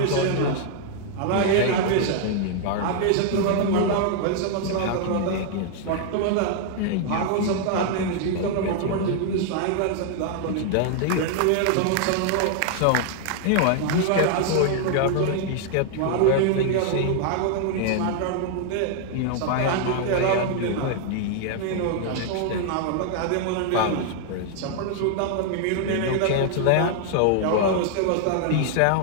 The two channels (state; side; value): different; both; correlation 0.00